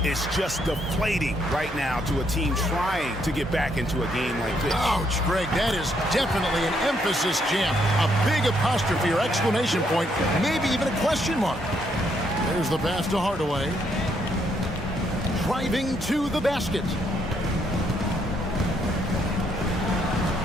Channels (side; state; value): both; normal; correlation 0.73